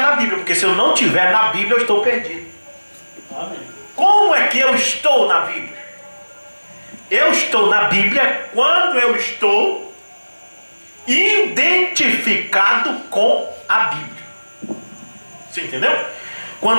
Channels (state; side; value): inverted; both; correlation -1.00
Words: Bíblia, porque se eu não estiver na Bíblia eu estou perdido. Amém. Como é que eu estou na Bíblia? Eu estou na Bíblia quando eu estou identificado com a Bíblia. Você entendeu?